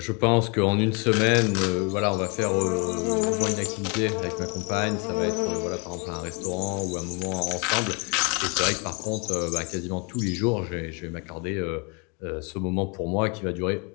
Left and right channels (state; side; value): quieter; right; 33.4 dB